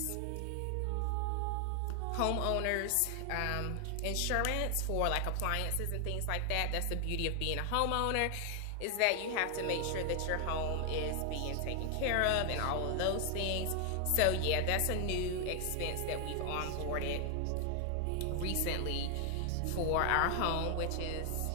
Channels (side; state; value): both; different; correlation 0.00